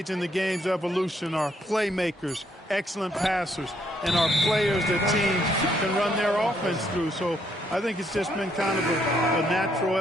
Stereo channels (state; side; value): normal; both; correlation 0.72